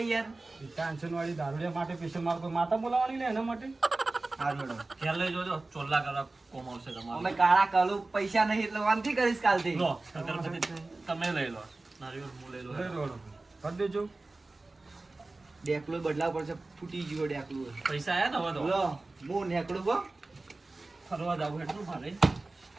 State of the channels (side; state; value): left; quieter; 3.2 dB